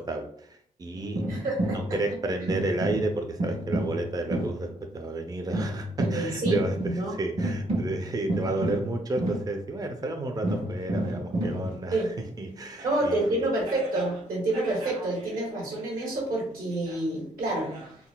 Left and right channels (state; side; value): normal; both; correlation 0.68